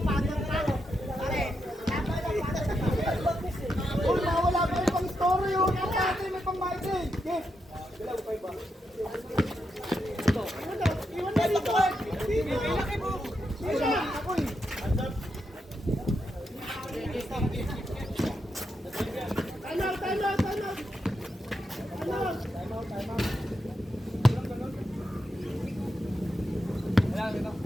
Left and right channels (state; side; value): normal; both; correlation 0.84